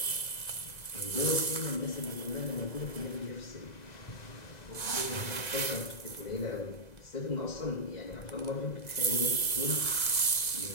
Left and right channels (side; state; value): right; late; 2.0 ms